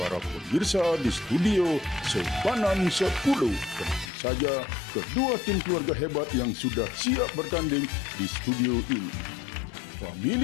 pemirsa di studio Sepanan 10. Tentu saja kedua tim keluarga hebat yang sudah siap bertanding di studio ini.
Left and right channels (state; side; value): drops out; right; at 4.1 s